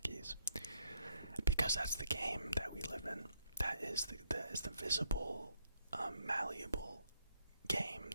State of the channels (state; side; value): inverted; both; correlation -0.73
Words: Because that's the game that we live in. That is the visible, malleable game